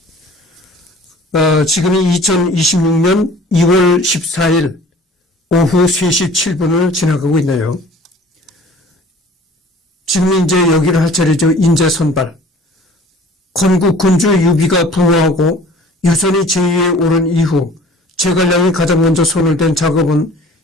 지금이 2026년 2월 14일 오후 3시 7분을 지나가고 있네요. 지금 이제 여기를 할 차례죠. 인재 선발. 건국 군주 유비가 부호하고 유선이 제위에 오른 이후 제갈량이 가장 먼저 손을 댄 작업은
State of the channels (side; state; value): both; normal; correlation 0.48